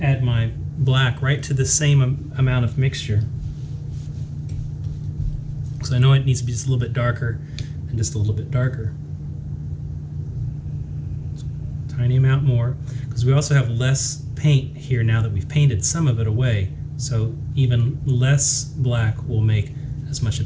add my black right to the same amount of mixture. So I know it needs to be just a little bit darker and just a little bit darker. Tiny amount more, because we also have less paint here now that we've painted some of it away. So even less black will make as much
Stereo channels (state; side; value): identical; both; correlation 1.00